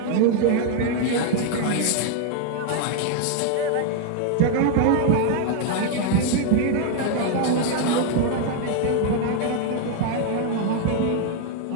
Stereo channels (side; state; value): both; different; correlation 0.00